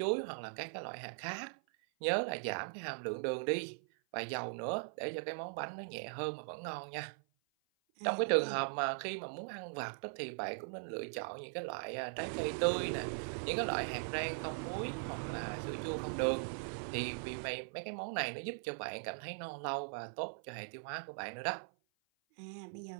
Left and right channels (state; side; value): silent; left; 51 dB below the other